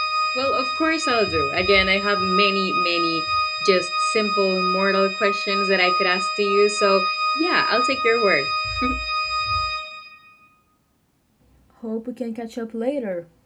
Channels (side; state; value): both; identical; correlation 1.00